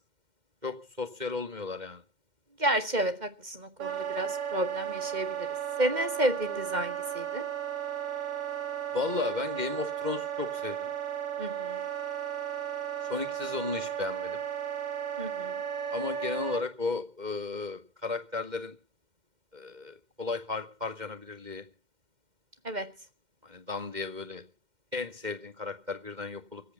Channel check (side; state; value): left; late; 2.1 ms